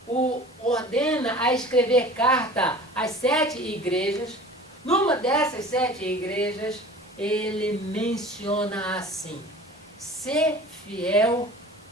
o ordena a escrever carta às 7 igrejas, numa dessas 7 igrejas, ele menciona assim: ser fiel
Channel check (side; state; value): both; normal; correlation 0.42